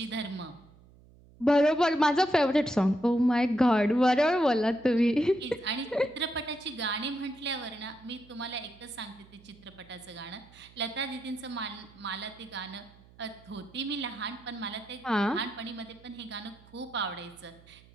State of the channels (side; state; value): right; noise; hum, 25 dB below the sound